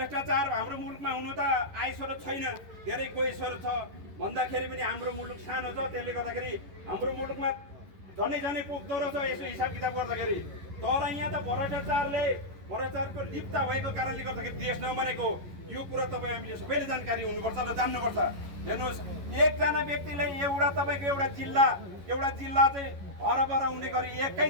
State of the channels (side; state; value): left; late; 11 ms